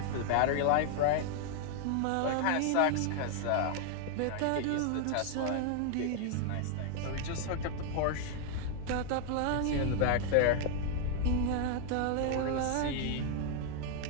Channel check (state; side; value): different; both; correlation 0.00